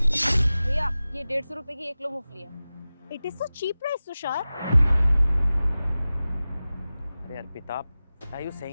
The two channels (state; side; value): inverted; both; correlation -0.96